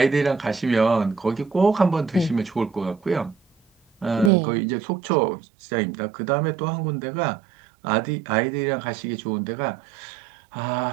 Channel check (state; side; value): drops out; left; at 4.3 s